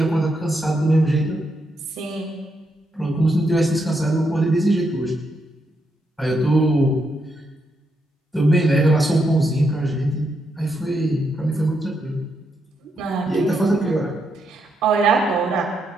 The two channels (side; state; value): both; normal; correlation 0.80